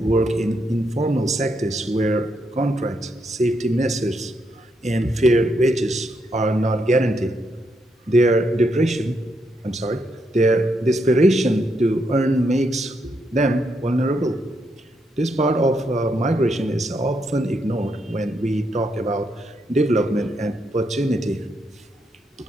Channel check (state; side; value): normal; both; correlation 0.79